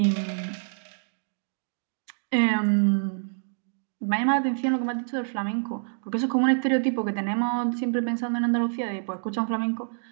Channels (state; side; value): silent; left; digital silence